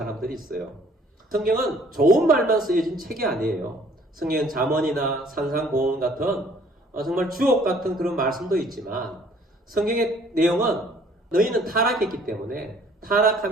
있어요. 성경은 좋은 말만 쓰여진 책이 아니에요. 성경은 잠언이나 산상보험 같은 정말 주옥 같은 그런 말씀도 있지만 성경의 내용은 너희는 타락했기 때문에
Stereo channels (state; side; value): normal; both; correlation 0.57